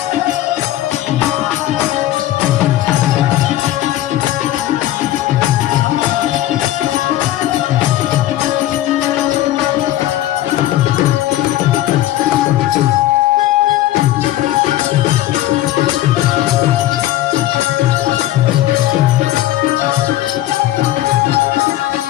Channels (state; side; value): quieter; right; 14.3 dB